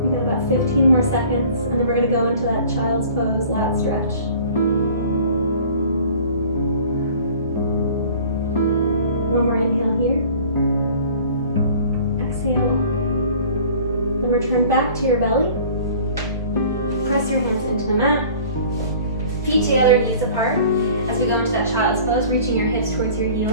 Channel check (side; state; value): both; inverted; correlation -0.47